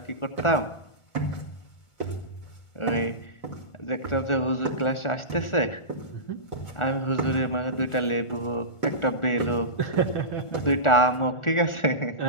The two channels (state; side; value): late; right; 1.4 ms